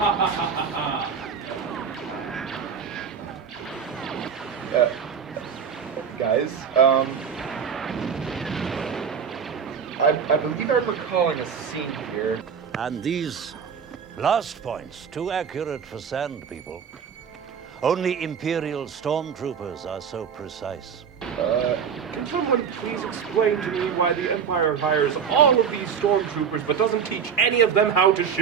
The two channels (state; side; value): quieter; left; 7.0 dB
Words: Guys, I believe I'm recalling a scene here. And these last points, too accurate for sand people. Only Imperial stormtroopers are so precise. Can someone please explain to me why the Empire hires all of these stormtroopers but doesn't teach any of them how to